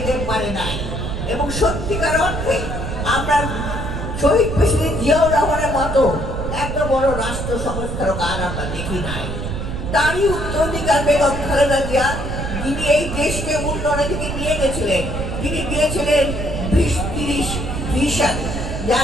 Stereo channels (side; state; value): right; noise; rumble, 4 dB below the sound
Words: পারে নাই। এবং সত্যিকার অর্থে আমরা শহীদ প্রেসিডেন্ট জিয়াউর রহমানের মতো এত বড় রাষ্ট্র সংস্কারক আর আমরা দেখি নাই। তারই উত্তরাধিকার বেগম খালেদা জিয়া, যিনি এই দেশকে উন্নয়নের দিকে নিয়ে গেছিলেন, তিনি দিয়েছিলেন 20-30 ভিশন,